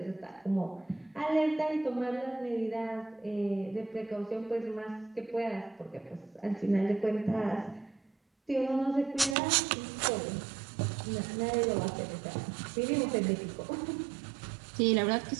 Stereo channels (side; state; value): left; drops out; at 9.3 s